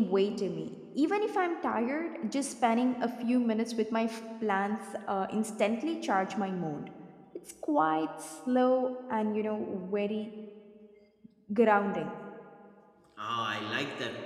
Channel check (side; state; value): both; identical; correlation 1.00